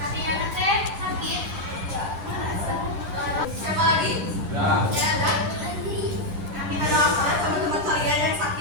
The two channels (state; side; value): late; left; 10 ms